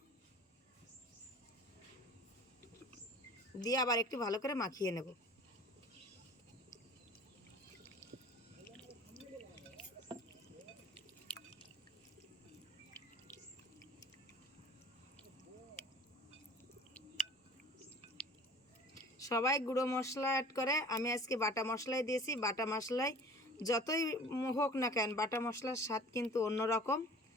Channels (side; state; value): both; normal; correlation 0.45